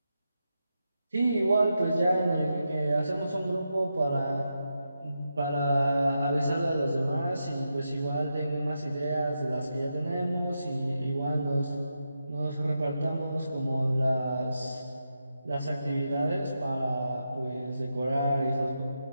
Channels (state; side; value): inverted; both; correlation -0.87